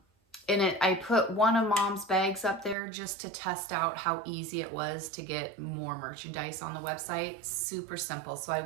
put one of Mom's bags up there just to test out how easy it was to get more merchandise on the website. Super simple. So I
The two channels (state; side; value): drops out; left; at 2.8 s